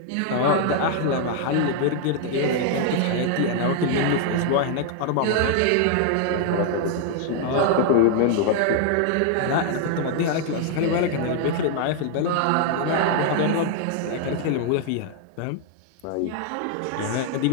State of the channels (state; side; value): different; both; correlation 0.00